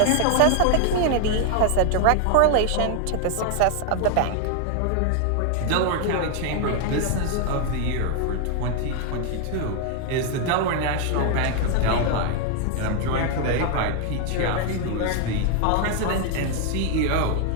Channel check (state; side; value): different; both; correlation 0.00